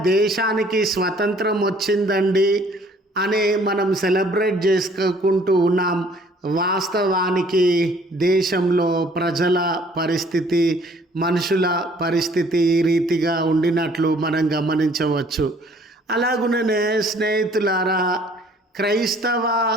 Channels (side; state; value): both; normal; correlation 0.58